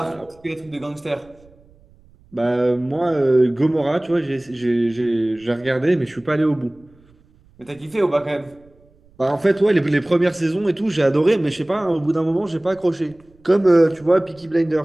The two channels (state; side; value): noise; right; rumble, 29 dB below the sound